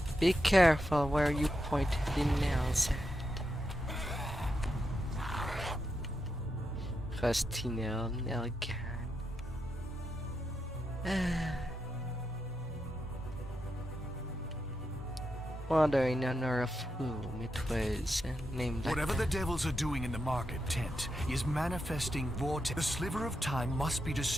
Be careful where you point the nails at. Rusty nail gun. Wondering under of whom it was named like Whatever the devils are doing in the market tent is manifesting vortex. The sliver of time must be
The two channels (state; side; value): normal; both; correlation 0.85